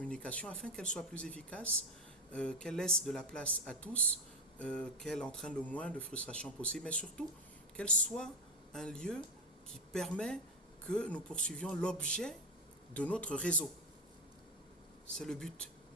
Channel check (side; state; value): both; normal; correlation 0.13